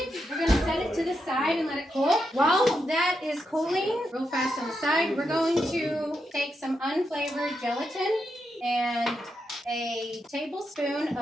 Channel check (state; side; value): normal; both; correlation 0.84